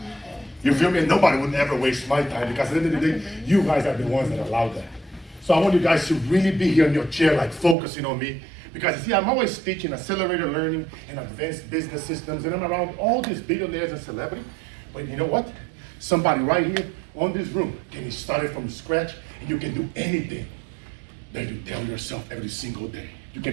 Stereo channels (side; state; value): left; drops out; at 7.8 s